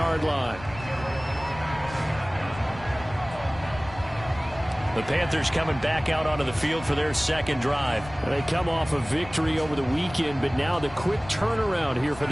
line. The Panthers coming back out onto the field for their second drive. They come off a victory over the weekend, but now the quick turnaround here for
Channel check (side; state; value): left; noise; rumble, 16 dB below the sound